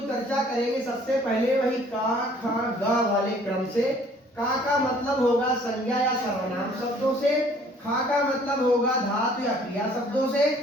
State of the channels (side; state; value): both; normal; correlation 0.56